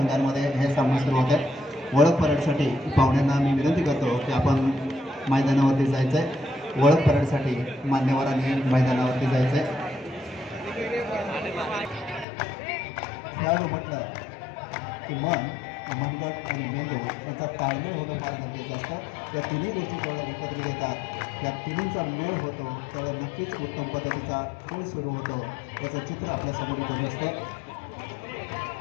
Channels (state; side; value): drops out; right; at 12.2 s